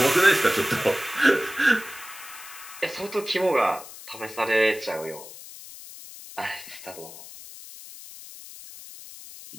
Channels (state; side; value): noise; left; hiss, 15 dB below the sound